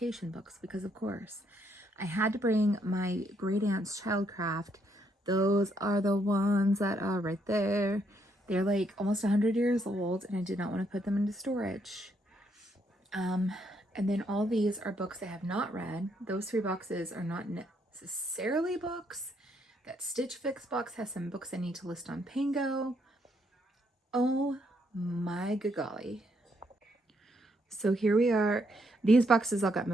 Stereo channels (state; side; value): normal; both; correlation 0.73